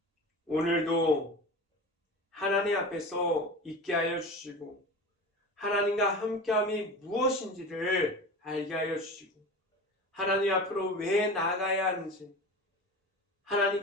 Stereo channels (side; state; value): both; normal; correlation 0.32